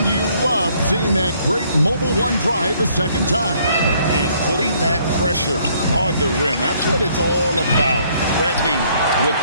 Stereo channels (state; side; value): inverted; both; correlation -0.65